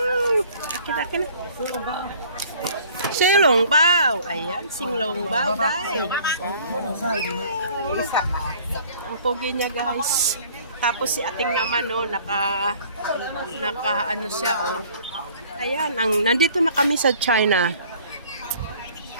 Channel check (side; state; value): both; inverted; correlation -0.53